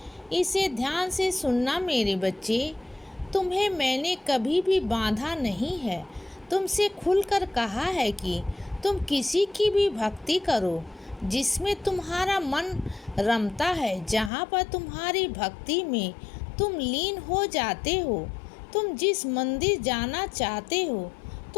इसे ध्यान से सुनना मेरे बच्चे। तुम्हें मैंने कभी भी बांधा नहीं है। तुमसे खुलकर कहा है कि तुम किसी की भी भक्ति करो जिसमें तुम्हारा मन रमता है, जहाँ पर तुम्हारी भक्ति में तुम लीन हो जाते हो। तुम जिस मंदिर जाना चाहते हो,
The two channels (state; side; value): drops out; right; at 14.3 s